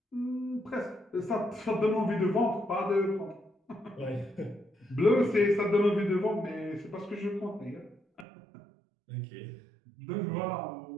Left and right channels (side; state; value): left; drops out; at 8.2 s